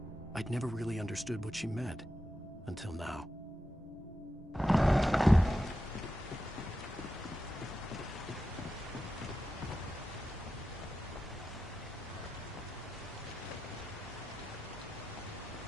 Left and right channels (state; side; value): normal; both; correlation 0.90